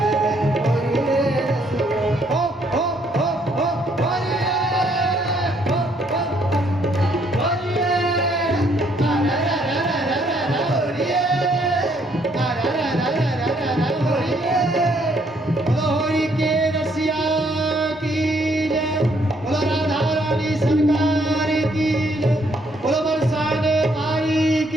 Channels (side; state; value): both; normal; correlation 0.68